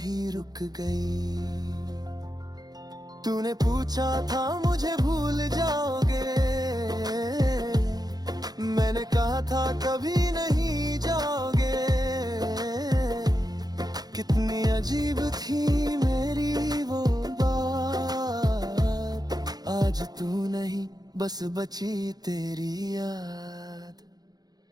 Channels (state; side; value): late; left; 0.19 ms